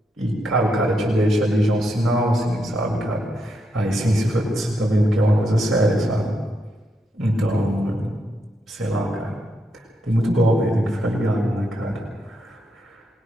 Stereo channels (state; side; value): normal; both; correlation 0.81